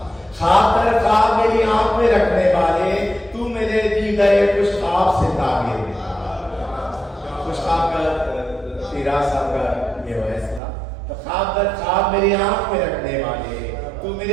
خواب در خواب میری آنکھ میں رکھنے والے، تو میرے دی گئے کچھ خواب سے تعبیر کچھ خواب کا تیرا صاحب کا یہ فیصلہ، تو خواب در خواب میری آنکھ میں رکھنے والے، تو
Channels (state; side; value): drops out; left; at 10.6 s